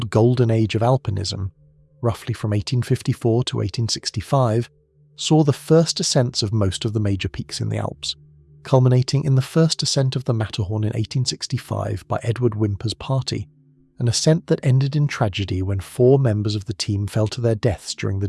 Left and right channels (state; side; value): identical; both; correlation 1.00